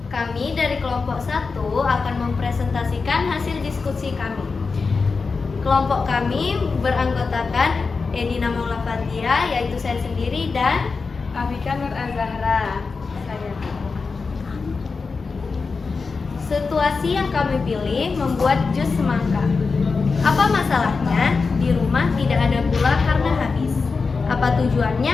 Kami dari kelompok 1 akan mempresentasikan hasil diskusi kami. Kelompok kami beranggotakan Edina Maula Fatia, yaitu saya sendiri, dan Afika Nur Azahra. Saya. situasi yang kami pilih membuat jus semangka. Apa masalahnya? Di rumah tidak ada gula karena habis. Apa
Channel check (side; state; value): right; quieter; 4.6 dB